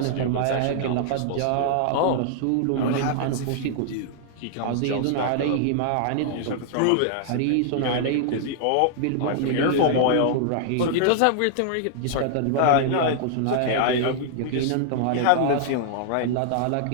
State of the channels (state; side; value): different; both; correlation -0.01